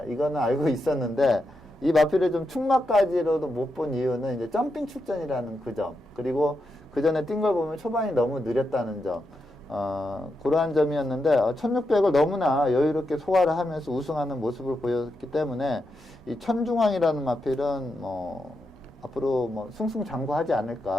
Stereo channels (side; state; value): both; normal; correlation 0.85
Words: 이거는 알고 있었는데 이 마필을 좀 축마까지로도 못 본 이유는 이제 점핑 출전이라는 그 점, 그리고 그 전에 뛴 걸 보면 초반이 너무 느렸다는 점, 그러한 점이었는데 1600을 너무나 여유롭게 소화를 하면서 우승하는 모습을 보였기 때문에 이 천중왕이라는 마필은 앞으로 승승장구하지